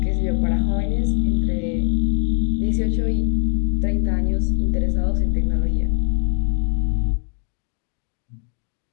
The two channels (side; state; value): right; silent; digital silence